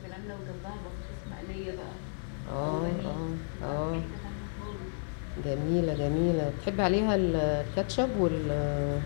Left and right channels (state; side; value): silent; right; digital silence